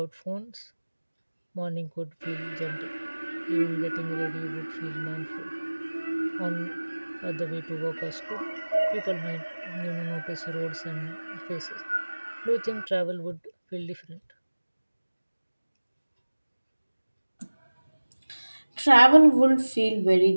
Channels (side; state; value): both; inverted; correlation -1.00